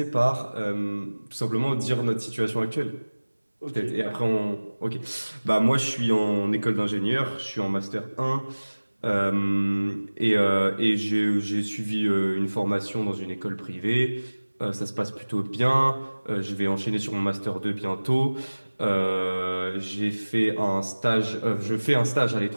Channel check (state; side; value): inverted; both; correlation -1.00